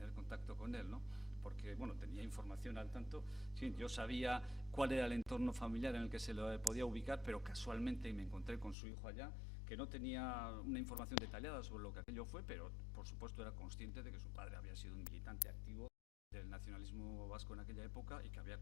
contacto con él, ¿no? Porque, bueno, tenía información al tanto. Sí, yo sabía cuál era el entorno familiar en el que se lo podía ubicar, pero casualmente me encontré con su hijo allá, que no tenía una información detallada sobre lo que aquello fue, pero por supuesto era consciente de que su padre había sido un militante activo del nacionalismo vasco en aquella época y que había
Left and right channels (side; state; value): right; drops out; at 8.8 s